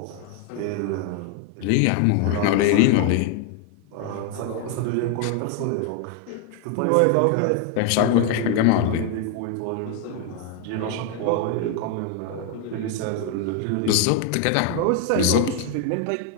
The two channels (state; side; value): different; both; correlation 0.01